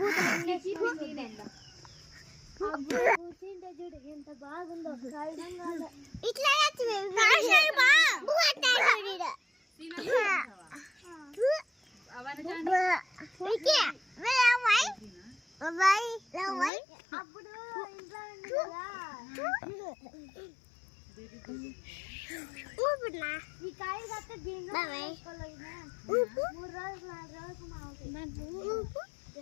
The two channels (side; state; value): right; drops out; at 16.7 s